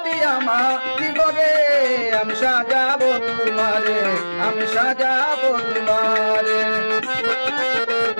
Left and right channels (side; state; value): both; inverted; correlation -1.00